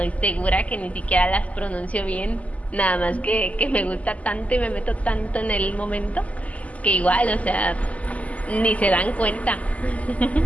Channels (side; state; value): right; late; 0.071 ms